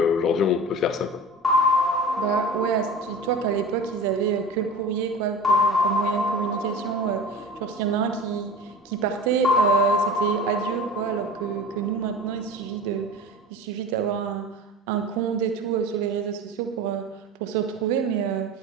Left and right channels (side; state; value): both; normal; correlation 0.35